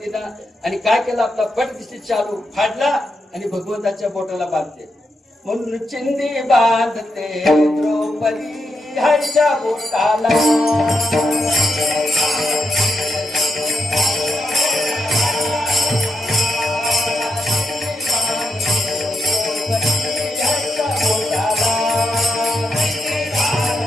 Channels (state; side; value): normal; both; correlation 0.83